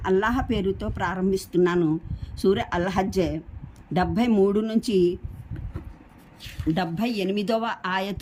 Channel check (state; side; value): identical; both; correlation 1.00